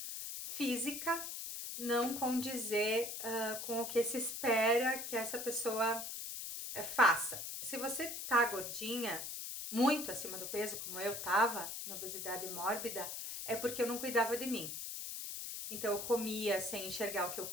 física não condizer com o que se espera que essa pessoa faça. Se você tá gordinha, muito acima do peso, como eu tava, na obesidade mórbida, é porque eu não cuidava de mim. Então eu comia sem enxergar o que eu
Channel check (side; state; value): left; noise; hiss, 6 dB below the sound